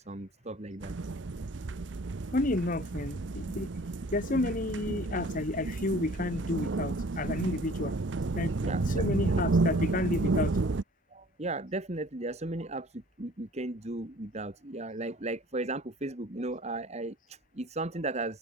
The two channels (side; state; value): both; normal; correlation 0.50